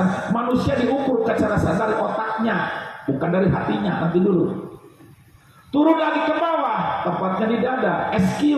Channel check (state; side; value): identical; both; correlation 1.00